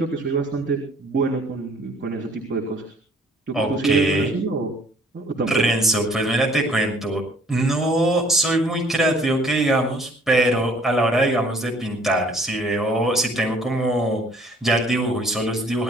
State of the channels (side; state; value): both; normal; correlation 0.57